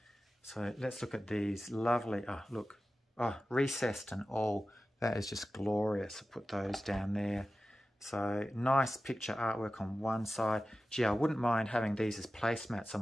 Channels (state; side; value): normal; both; correlation 0.94